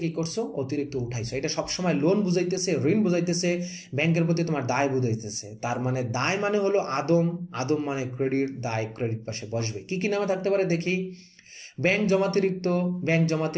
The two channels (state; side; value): identical; both; correlation 1.00